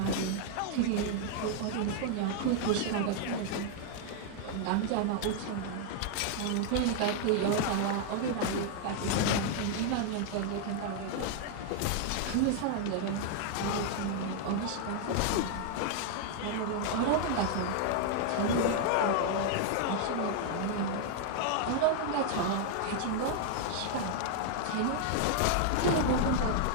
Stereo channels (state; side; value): different; both; correlation 0.00